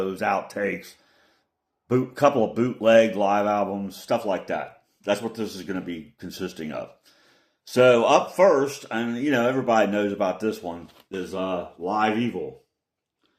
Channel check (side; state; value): both; identical; correlation 1.00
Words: outtakes, couple of bootleg live albums, stuff like that. That's what this is going to be consisting of. So up first, and everybody knows about this one, is Live Evil.